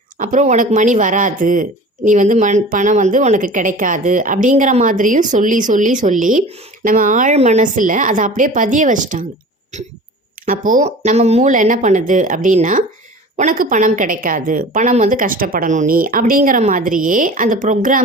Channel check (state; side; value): normal; both; correlation 0.40